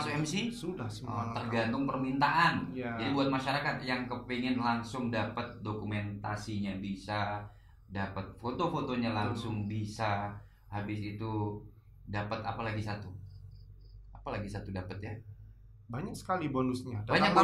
MC? Sudah semua. lengkap. Tergantung permintaan. Iya. Jadi buat masyarakat yang kepingin langsung dapat dokumentasinya bisa, dapat foto-fotonya langsung bisa, habis itu dapat apa lagi satu? Apa lagi satu dapat ya? Banyak sekali bonusnya. Banyak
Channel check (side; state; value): both; identical; correlation 1.00